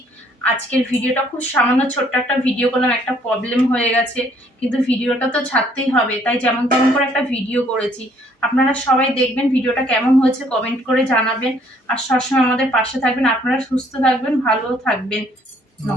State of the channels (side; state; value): both; normal; correlation 0.63